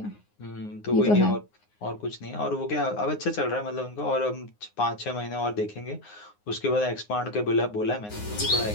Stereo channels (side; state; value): right; late; 9.6 ms